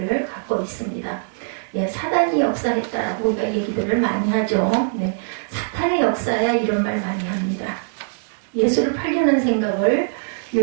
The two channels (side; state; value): left; silent; digital silence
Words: 갖고 있습니다. 사단이 역사했다라고 우리가 얘기들을 많이 하죠. 사탄의 역사야 이런 말 많이 합니다. 예수를 팔려는 생각을